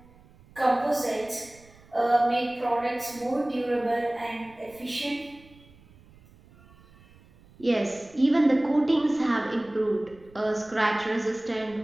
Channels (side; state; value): right; noise; rumble, 26 dB below the sound